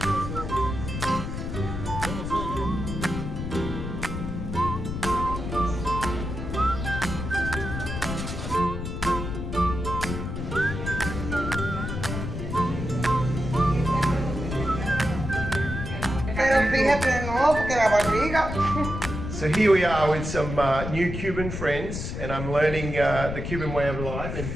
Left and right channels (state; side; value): noise; left; rumble, 5 dB below the sound